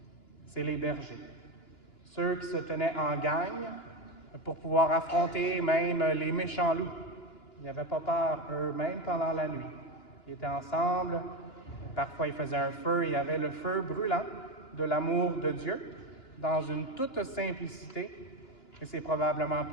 C'est les bergers. Ceux qui se tenaient en gang pour pouvoir affronter même les méchants loups. Ils n'avaient pas peur, eux, même pendant la nuit. Ils étaient ensemble. Parfois, ils faisaient un feu. Il y avait le feu brûlant de l'amour de Dieu dans une toute simplicité. Et c'est probablement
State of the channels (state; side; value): late; right; 2.9 ms